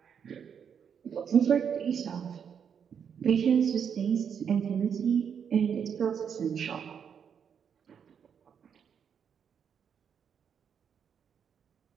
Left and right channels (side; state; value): left; quieter; 7.5 dB